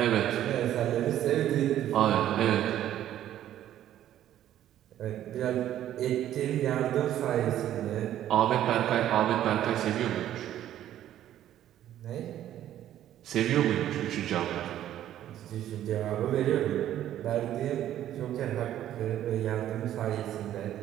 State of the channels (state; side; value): quieter; left; 11.9 dB